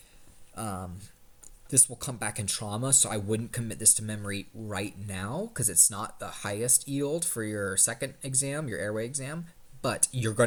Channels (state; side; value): identical; both; correlation 1.00